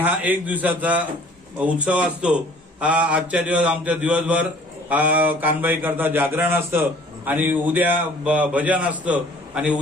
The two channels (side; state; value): both; normal; correlation 0.53